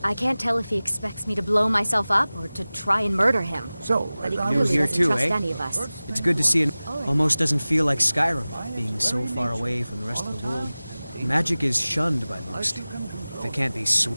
I can't tell if he expects me to blow myself up or to try and murder him. So, but he New clearly here doesn't too, trust eh? any of us. It's good to see it. Almost doesn't feel like Skyrim, being so far away from the rest of the world. Magic is shunned by most. If it can't be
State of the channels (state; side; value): inverted; both; correlation -0.98